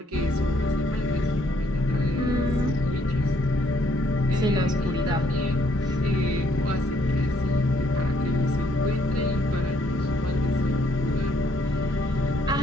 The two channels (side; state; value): both; normal; correlation 0.68